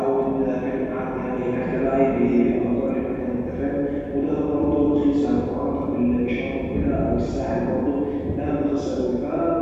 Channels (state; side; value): identical; both; correlation 1.00